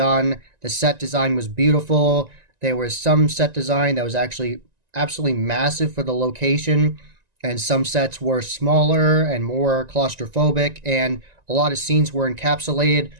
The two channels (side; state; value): left; late; 1.9 ms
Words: The set design was beautiful. There was some set design that was actually absolutely massive for the location, and some sets were smaller and more claustrophobic, and a lot of scenes were encapsulated.